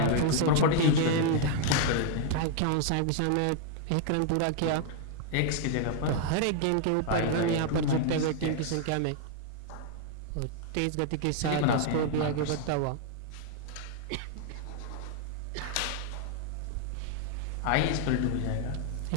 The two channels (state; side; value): different; both; correlation 0.00